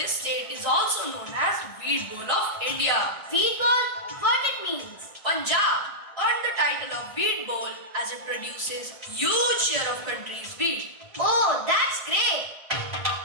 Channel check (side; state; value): right; late; 1.5 ms